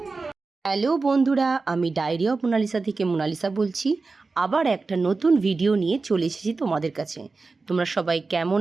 Hello বন্ধুরা, আমি ডায়েরি অফ মোনালিসা থেকে মোনালিসা বলছি। আবার একটা নতুন ভিডিও নিয়ে চলে এসেছি তোমাদের কাছে। তোমরা সবাই কেমন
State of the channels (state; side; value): quieter; left; 4.0 dB